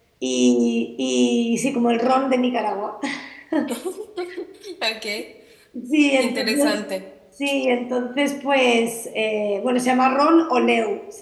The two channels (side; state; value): both; identical; correlation 1.00